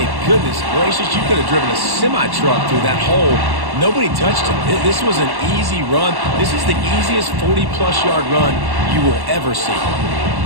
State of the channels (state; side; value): late; left; 1.1 ms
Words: goodness gracious, you could have driven a semi-truck through that hole. Nobody touched him. This was an easy run. This is the easiest 40-plus yard run you will ever see.